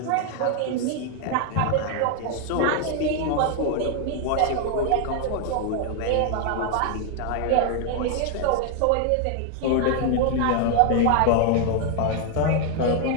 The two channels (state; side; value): different; both; correlation 0.00